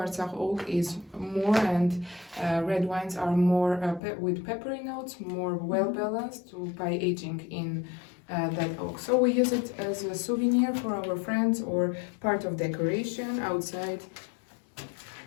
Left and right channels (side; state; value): right; drops out; at 4.0 s